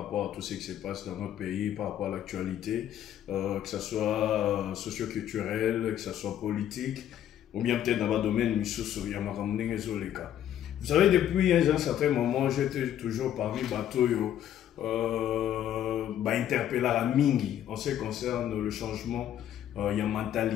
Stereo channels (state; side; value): quieter; right; 10.9 dB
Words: à tout ce qui se passe dans notre pays, par rapport à l'actualité, que ce soit socio-culturel, que ce soit politique, ou bien peut-être dans le domaine de les cas. Vous savez, depuis un certain moment, j'étais toujours parmi Batoyo, interpellé à Mingi en ce qui concerne le changement, il y a